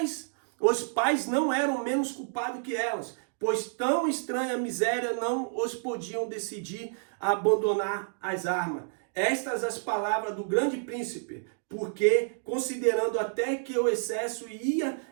pais não eram menos culpados que elas, pois tão estranha miséria não os podiam decidir a abandonar as armas. Estas as palavras do grande príncipe, porque, considerando até que o excesso ia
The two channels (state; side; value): silent; left; digital silence